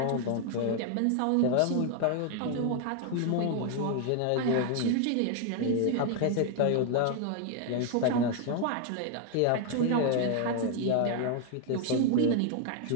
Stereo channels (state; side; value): different; both; correlation 0.00